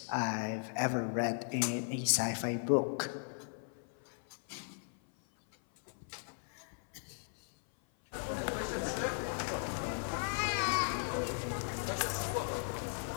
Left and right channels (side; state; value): right; silent; 53 dB below the other